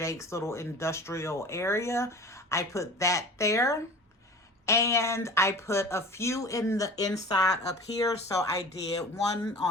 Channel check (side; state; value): both; normal; correlation 0.38